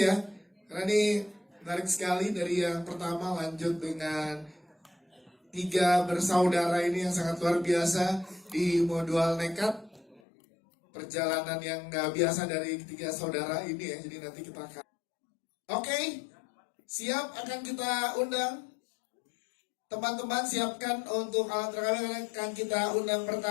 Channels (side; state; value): right; drops out; at 10.2 s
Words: ya. Karena ini menarik sekali dari yang pertama lanjut dengan tiga bersaudara ini yang sangat luar biasa di Modual Nekat. Perjalanan yang nggak biasa dari tiga saudara ini ya. Jadi nanti kita akan. Oke, siap akan kita undang. Teman-teman siapkan untuk alat rekaman yang akan kita undang